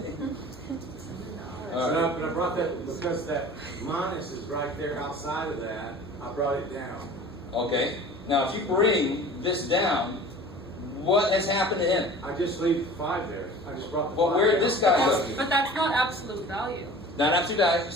But I brought that because that minus is right there outside of that. I brought it down. Okay. Now, if you bring this down, what has happened to him? I just leave 5 there. I just brought the 5 Well, where did down. this guy go? But that's not absolute value. Not absolute value.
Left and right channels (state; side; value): normal; both; correlation 0.42